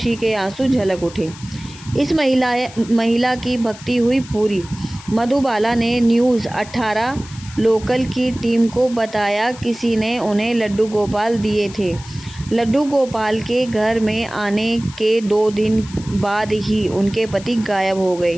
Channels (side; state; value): left; noise; hiss, 18 dB below the sound